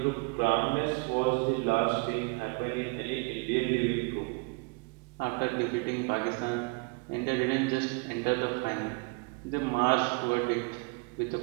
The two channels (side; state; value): left; quieter; 30.9 dB